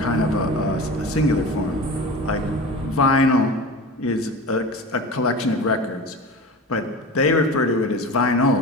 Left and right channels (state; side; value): normal; both; correlation 0.32